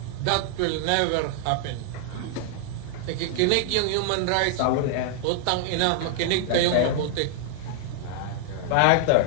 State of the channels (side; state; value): both; different; correlation 0.00